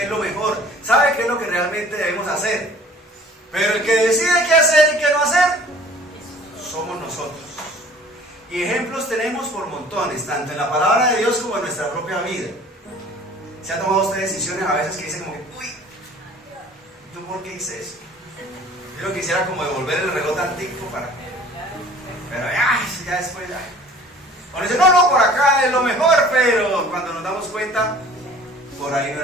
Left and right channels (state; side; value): normal; both; correlation 0.50